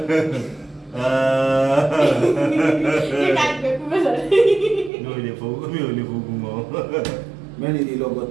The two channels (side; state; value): left; drops out; at 4.9 s